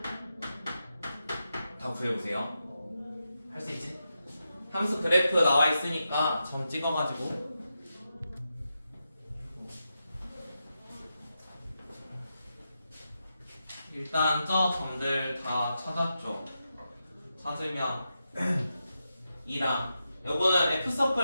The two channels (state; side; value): inverted; both; correlation -0.88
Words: 다 구해보세요. 할 수 있지? 함수 그래프 나와 있으니까 점 찍어가지고 일단 저 점들 다 찾았죠. 찾으면 2랑 요거는